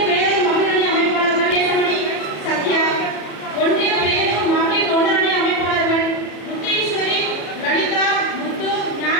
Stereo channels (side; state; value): right; late; 34 ms